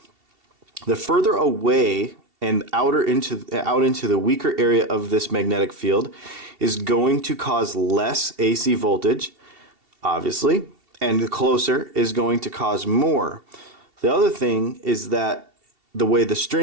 The further away and out into the weaker area of this magnetic field is going to cause less AC voltage, obviously, and the closer is going to cause more. The other thing is that the way the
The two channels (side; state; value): left; late; 2.7 ms